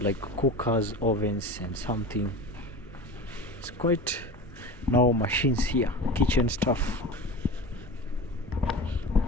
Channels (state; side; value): normal; both; correlation 0.31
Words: cookers, ovens, and something. It's quite now machines here, kitchen stuff.